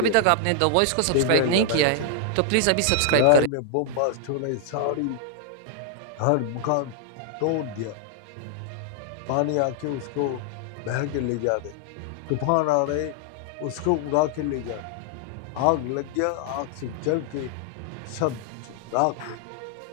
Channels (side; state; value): both; different; correlation 0.00